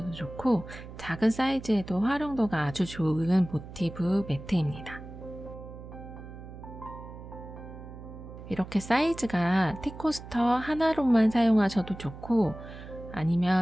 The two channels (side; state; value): right; noise; hum, 14 dB below the sound